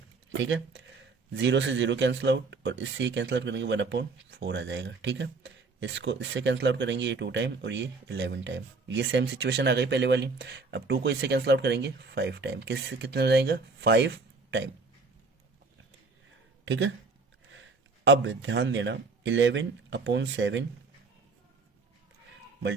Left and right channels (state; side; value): quieter; left; 4.0 dB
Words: ठीक है। 0 से 0 कैंसिल आउट और इससे कैंसिल आउट करेंगे 1/4 आ जाएगा, ठीक है। इसको इससे कैंसिल आउट करेंगे, ये 2 टाइम और ये 11 टाइम। ये सेम सिचुएशन आ गई पहले वाली। अब 2 को इससे कैंसिल आउट करेंगे 5 टाइम, किससे कितना हो जाएगा, 5 टाइम, ठीक है। अब ध्यान देना 11/7